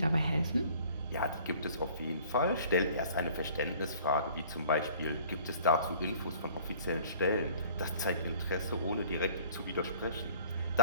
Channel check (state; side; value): inverted; both; correlation -0.51